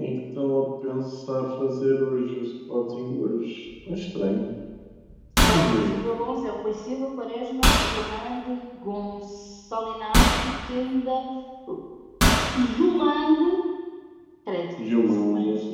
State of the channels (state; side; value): identical; both; correlation 1.00